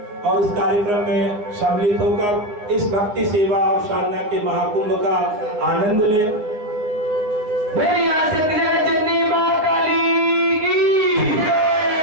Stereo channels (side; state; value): left; late; 9.6 ms